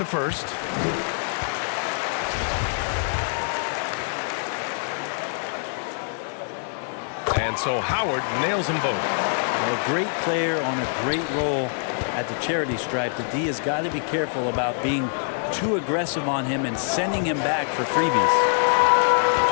first. And so Howard nails them both. A great player on a great role at the charity stripe. The D has got to be careful about being too aggressive on him and sending him back for freebies.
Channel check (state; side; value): silent; right; digital silence